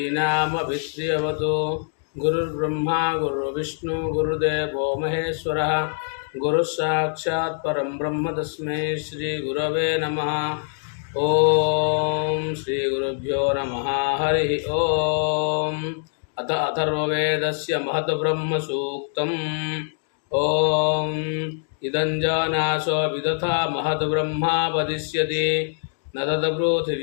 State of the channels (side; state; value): right; silent; digital silence